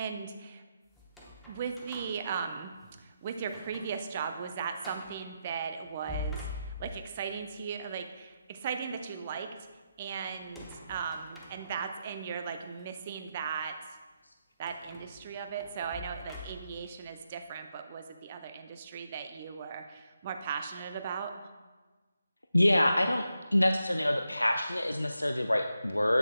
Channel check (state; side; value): inverted; both; correlation -0.86